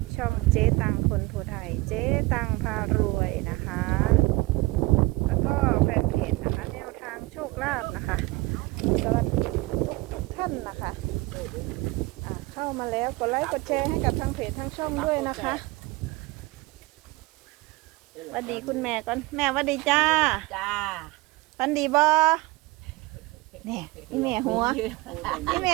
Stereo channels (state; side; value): quieter; left; 22.6 dB